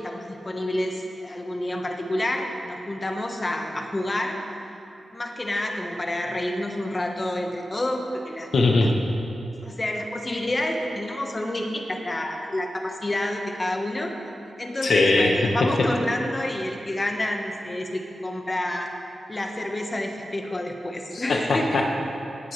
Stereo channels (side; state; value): both; normal; correlation 0.93